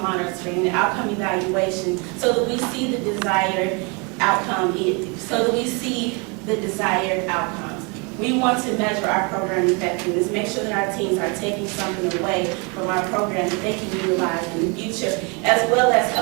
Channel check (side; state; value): left; quieter; 31.9 dB